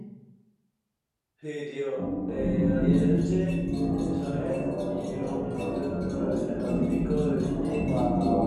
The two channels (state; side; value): identical; both; correlation 1.00